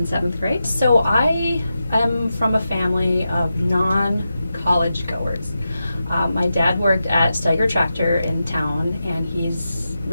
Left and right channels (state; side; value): inverted; both; correlation -0.90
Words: 7th grade. So I am from a family of non-college goers. My dad worked at Untitled Chapter in town, and he's